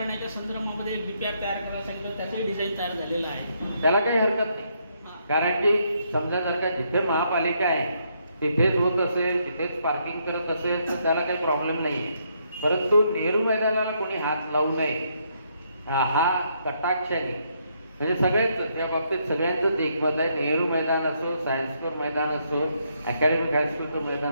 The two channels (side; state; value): both; inverted; correlation -0.74